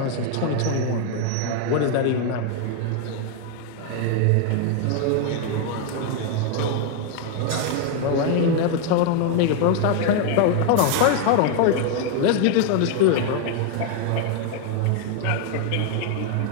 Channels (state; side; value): different; both; correlation 0.00